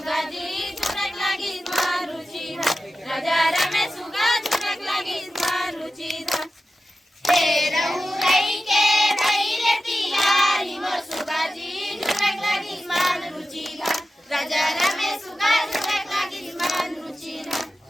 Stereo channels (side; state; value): both; normal; correlation 0.93